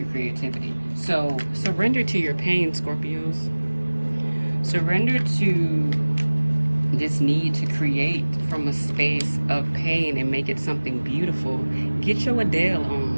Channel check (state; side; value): inverted; both; correlation -1.00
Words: creativity. So surrender to your pain, Scorpios. Surrender to this need to create from a space of pain and make it something beautiful. Get your Adele